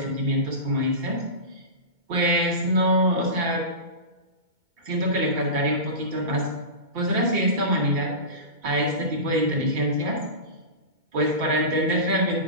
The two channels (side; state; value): left; late; 2.2 ms